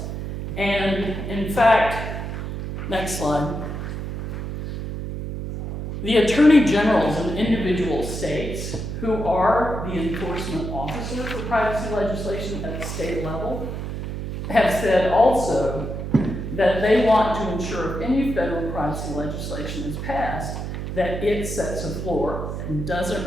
And in fact, next slide, the attorney generals in individual states who are the enforcement officer for privacy legislation at the state level have said also that they want to ensure if any federal privacy legislation is passed, that it sets a floor and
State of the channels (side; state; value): right; noise; hum, 5 dB below the sound